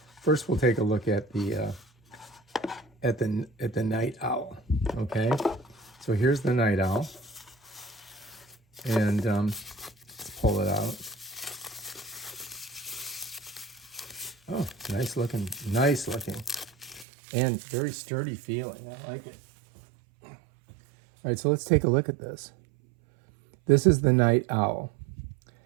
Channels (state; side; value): drops out; left; at 17.1 s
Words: first we'll take a look at the Night Owl, okay? So here's the Night Owl, and let's pull it out. Oh, nice looking, and very sturdy feeling. I like it. All right, so let's take a look at this. This is the Night Owl,